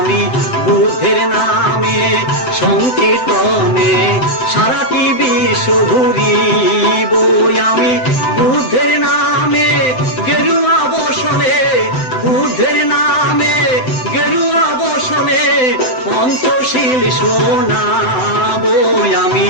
বুদ্ধের নামে সংকীর্তনে সারাটি বিশ্ব ঘুরিব। আমি বুদ্ধের নামে গেরুয়া বসনে, বুদ্ধের নামে গেরুয়া বসনে পঞ্চশীল শোনাব। আমি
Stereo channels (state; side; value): late; right; 7.8 ms